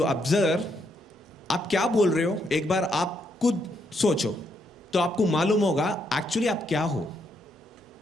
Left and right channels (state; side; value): normal; both; correlation 0.76